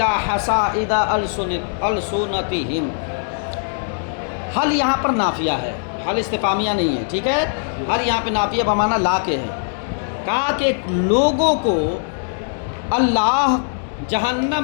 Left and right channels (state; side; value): silent; right; digital silence